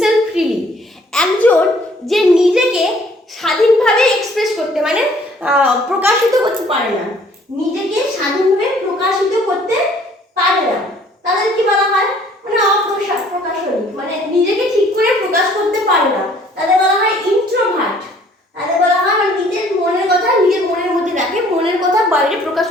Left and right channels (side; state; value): both; normal; correlation 0.58